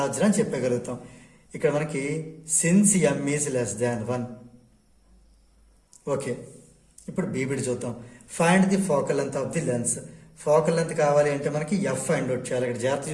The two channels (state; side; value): identical; both; correlation 1.00